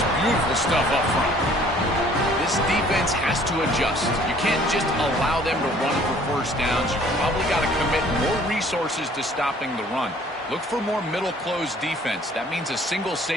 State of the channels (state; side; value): normal; both; correlation 0.56